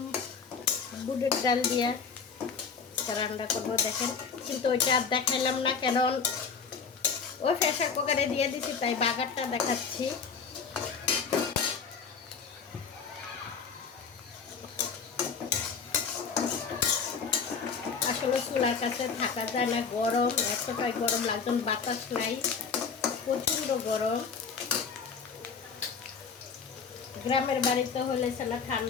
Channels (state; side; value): quieter; right; 5.8 dB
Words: বুটের ডাল দিয়া রান্না করবো। দেখেন, কিন্তু ওইটা আর দেখাইলাম না, কারণ ওই প্রেসার কুকারে দিয়ে দিছি, তাই বাগারটা দেখাচ্ছি। আসলে চুলার কাছে থাকা যায় না, গরম, এতটাই গরম লাগছে, বাতাস নাই, প্রচণ্ড গরম। গ্রামের বাড়িতে হলে সেটা